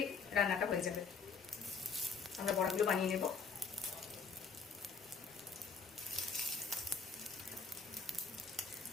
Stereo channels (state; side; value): quieter; right; 5.3 dB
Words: রান্নাটা হয়ে যাবে। আমরা বড়াগুলো বানিয়ে নেব।